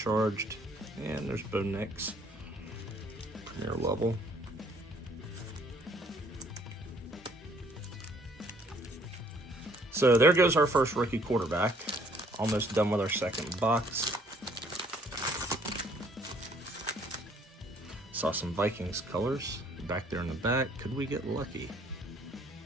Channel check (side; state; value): both; normal; correlation 0.61